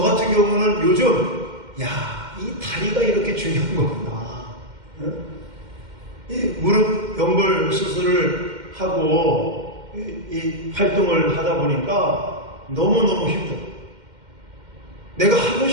같은 경우는 요즘 이 다리가 이렇게 중요한 거구나. 이 무릎 연골 수술을 하고 이 활동을 하다 보니까 너무너무 힘들어. 내가 하고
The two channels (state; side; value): late; left; 2.1 ms